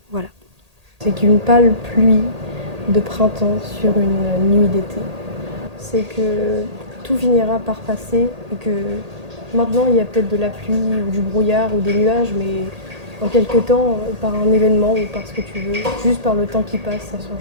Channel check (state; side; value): late; left; 1.8 ms